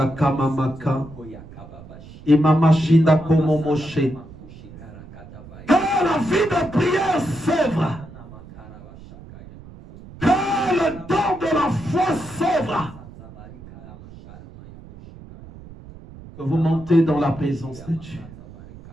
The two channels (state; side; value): noise; right; rumble, 18 dB below the sound